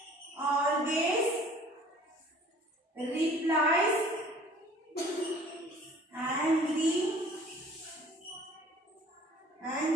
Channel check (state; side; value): normal; both; correlation 0.51